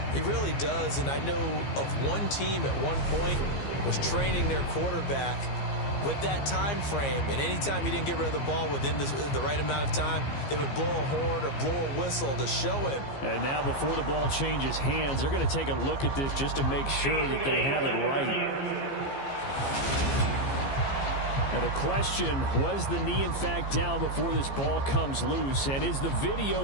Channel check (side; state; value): right; late; 15 ms